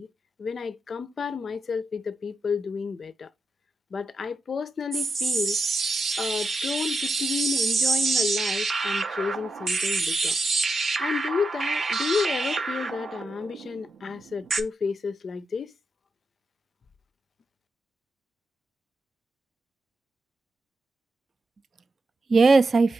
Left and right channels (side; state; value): both; normal; correlation 0.86